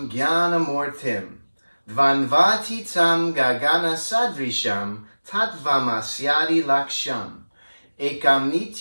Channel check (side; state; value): both; inverted; correlation -1.00